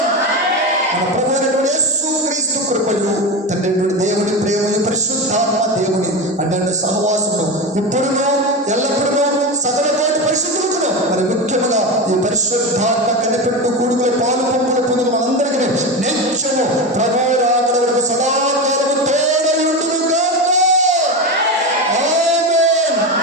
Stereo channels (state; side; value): normal; both; correlation 0.20